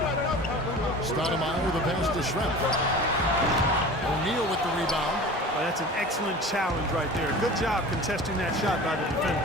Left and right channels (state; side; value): normal; both; correlation 0.38